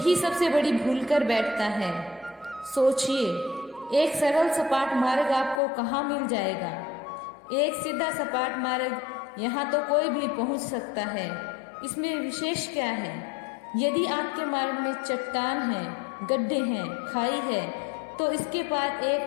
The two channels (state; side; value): drops out; right; at 5.6 s